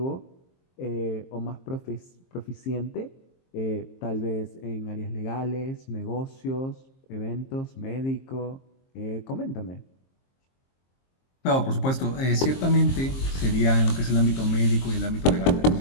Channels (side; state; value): right; late; 23 ms